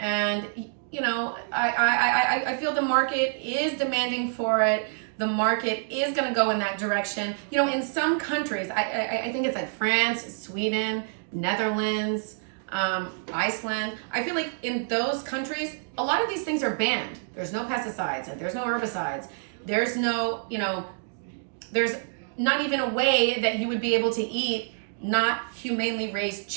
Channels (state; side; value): silent; left; digital silence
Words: you know, I feel the market is demanding for it. The market is gonna go in that direction. You know, in some countries, I think it's like France, Sweden, Netherlands, Iceland. I feel like in those countries, a lot of these things are banned. There's no pesticides, and there's no herbicides. There's no, you know, there's not even a way that you would be able to eat not humanely raised